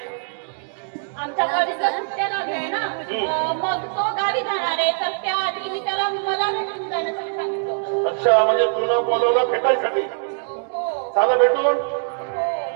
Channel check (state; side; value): silent; left; digital silence